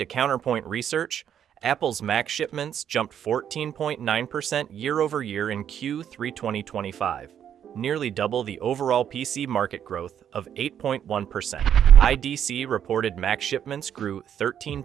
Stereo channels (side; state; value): left; quieter; 9.3 dB